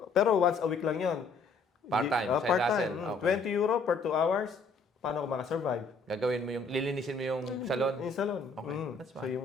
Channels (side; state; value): right; quieter; 4.0 dB